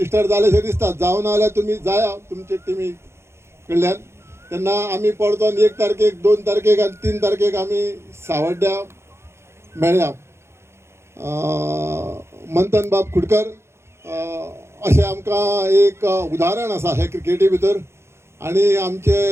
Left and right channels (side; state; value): left; late; 0.13 ms